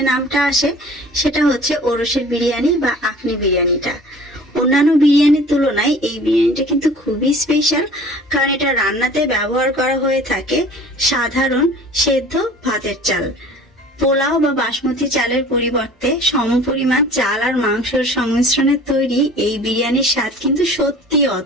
নামটা আসে সেটা হচ্ছে ওরসের বিরিয়ানি বা আখনি বিরিয়ানিটা। অন্যান্য বিরিয়ানির তুলনায় এই বিরিয়ানিটা কিন্তু খুবই স্পেশাল, কারণ এটা রান্নাতে ব্যবহার করা হয়ে থাকে সাধারণ সেদ্ধ ভাতের চাল। পোলাও বা বাসমতি চালের পরিবর্তে সমপরিমাণ চাল আর মাংসের সংমিশ্রণে তৈরি এই বিরিয়ানির স্বাদ কিন্তু সত্যি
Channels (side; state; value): both; normal; correlation 0.46